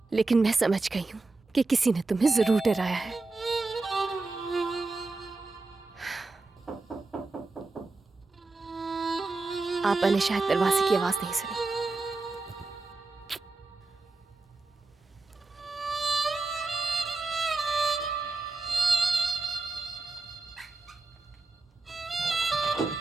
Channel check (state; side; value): quieter; left; 3.6 dB